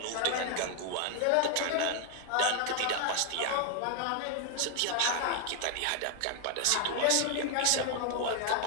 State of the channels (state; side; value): different; both; correlation 0.00